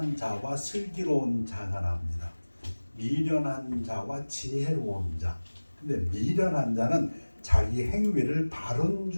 자와 슬기로운 자가 나옵니다. 미련한 자와 지혜로운 자. 근데 미련한 자는 자기 행위를 바른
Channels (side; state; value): both; inverted; correlation -1.00